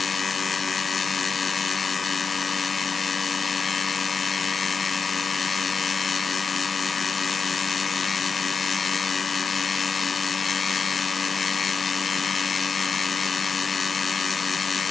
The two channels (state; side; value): quieter; right; 5.1 dB